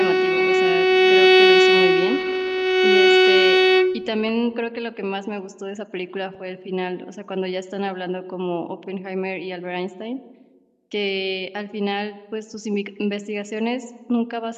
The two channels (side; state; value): both; identical; correlation 1.00